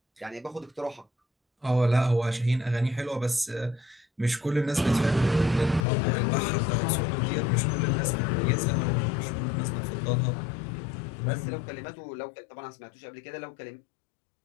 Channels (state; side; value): drops out; right; at 5.9 s